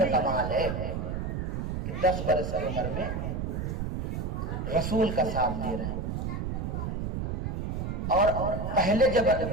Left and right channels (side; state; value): right; noise; rumble, 2 dB below the sound